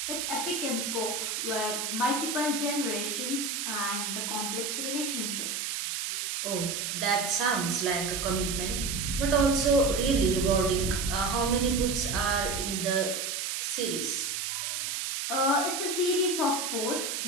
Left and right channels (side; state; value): right; noise; hiss, 2 dB below the sound